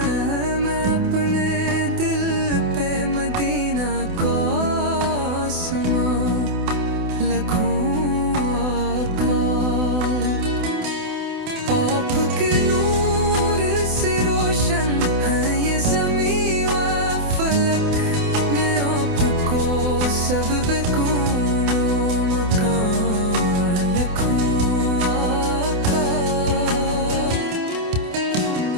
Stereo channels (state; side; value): late; left; 28 ms